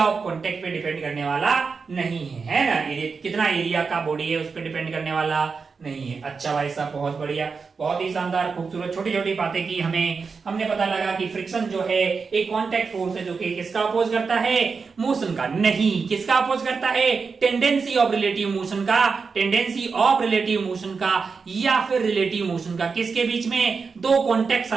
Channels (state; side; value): quieter; left; 5.1 dB